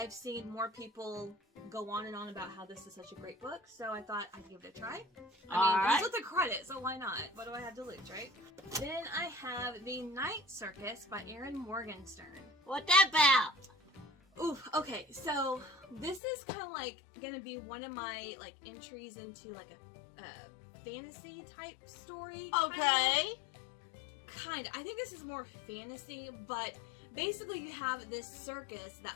seen more people go on and on about how this is such a great book, so I thought I'd give it a try. I mean, it's with the credit, so why not? What do I have to lose, right? Then I have The Night Circus by Erin Morgenstern. What that about? Oof, okay, so this is kind of like gonna be one of my like entries into like a fantasy type story. Okay. Kind. I think this is more fantasy, but basically you have this circus that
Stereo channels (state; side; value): drops out; right; at 16.2 s